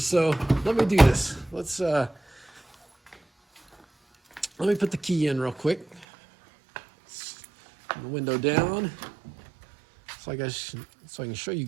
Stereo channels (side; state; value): left; drops out; at 6.1 s